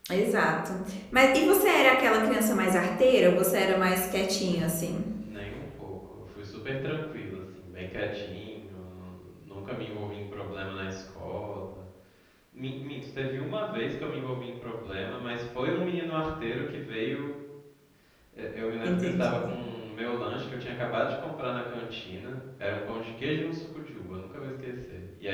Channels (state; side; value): identical; both; correlation 1.00